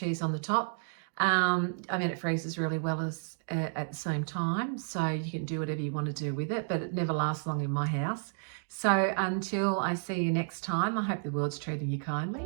on the top. I mean, it freezes really well at the same time, so you can do whatever you want to do with it, but it never lasts long in my house. So until I see you next time, I hope the world's treating you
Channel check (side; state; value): left; silent; digital silence